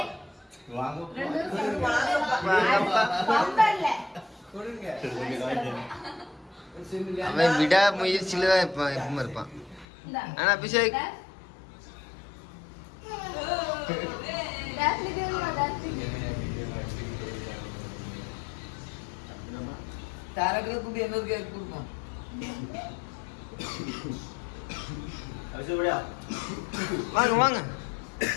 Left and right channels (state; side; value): drops out; right; at 9.9 s